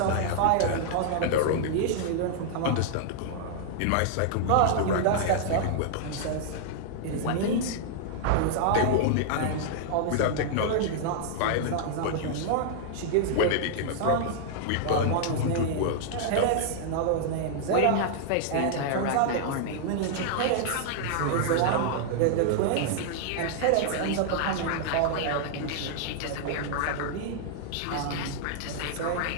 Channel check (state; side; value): different; both; correlation -0.01